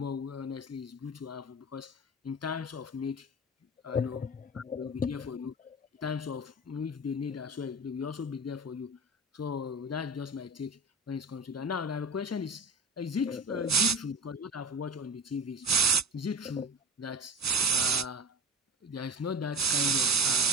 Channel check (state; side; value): normal; both; correlation 0.31